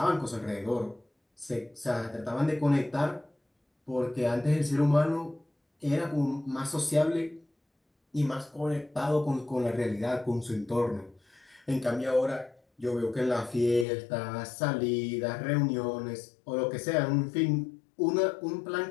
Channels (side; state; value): right; drops out; at 13.9 s